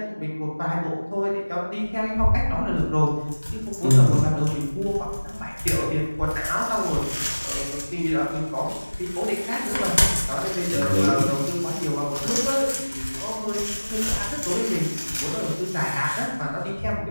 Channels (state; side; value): inverted; both; correlation -1.00